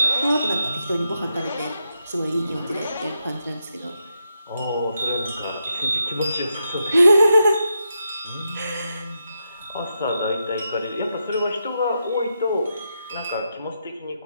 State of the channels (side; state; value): both; inverted; correlation -0.84